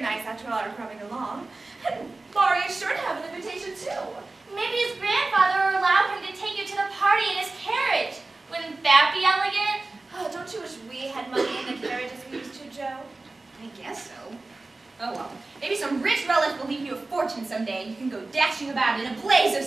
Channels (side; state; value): left; quieter; 3.3 dB